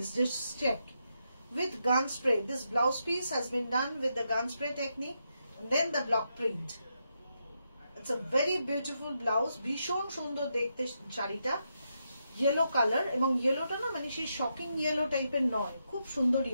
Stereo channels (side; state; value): both; inverted; correlation -0.83